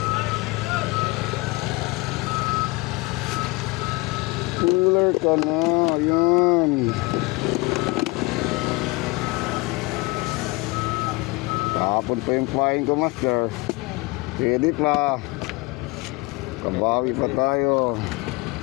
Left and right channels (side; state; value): right; quieter; 23.9 dB